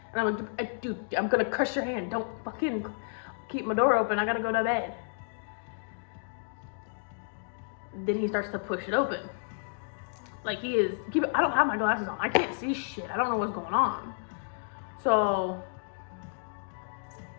And I'm like, dude, I'm gonna crush your hand. Don't fucking keep my door open. I gotta go to bed. Then he starts to push it open. Like he is, I don't have my glasses on. I can't see shit. I don't know what's going on. So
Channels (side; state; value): right; silent; digital silence